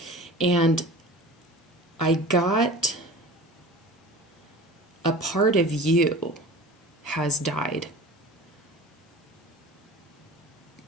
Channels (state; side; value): normal; both; correlation 0.37